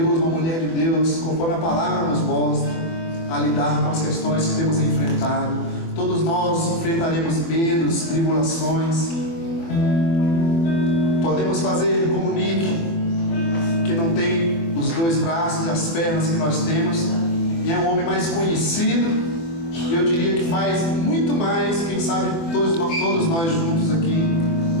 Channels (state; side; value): late; right; 24 ms